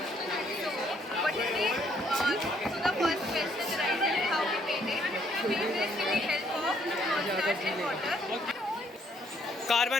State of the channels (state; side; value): normal; both; correlation 0.67